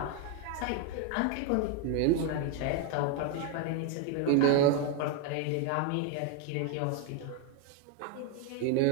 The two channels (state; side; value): different; both; correlation 0.01